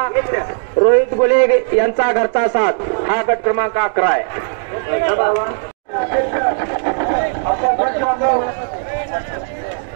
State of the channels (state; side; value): silent; left; digital silence